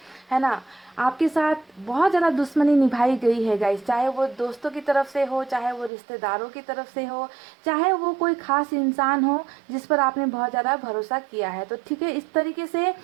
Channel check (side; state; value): left; drops out; at 5.9 s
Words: ना। आपके साथ बहुत ज़्यादा दुश्मनी निभाई गई है गाइस, चाहे वो दोस्तों की तरफ से हो, चाहे वो रिश्तेदारों की तरफ से हो, चाहे वो कोई ख़ास इंसान हो जिस पर आपने बहुत ज़्यादा भरोसा किया है। तो ठीक है, इस तरीके से